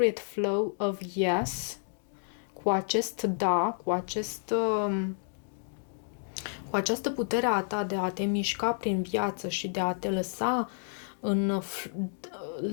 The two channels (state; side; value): silent; right; digital silence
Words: flow of yes, cu acest da, cu această putere a ta de a te mișca prin viață și de a te